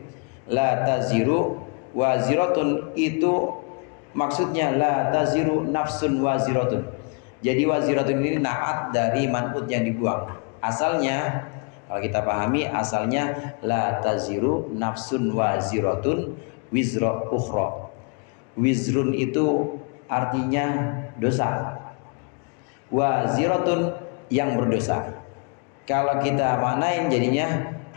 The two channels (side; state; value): right; quieter; 36.4 dB